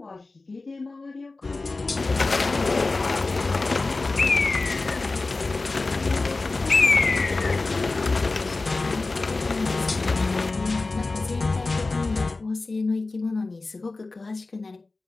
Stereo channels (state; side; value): quieter; right; 3.5 dB